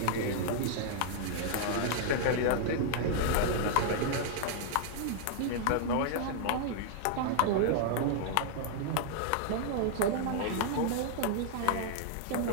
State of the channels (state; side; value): different; both; correlation -0.01